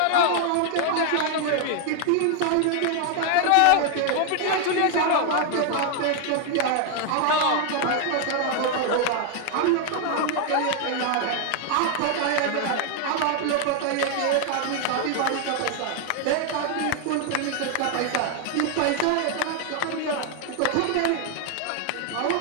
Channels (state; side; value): different; both; correlation 0.00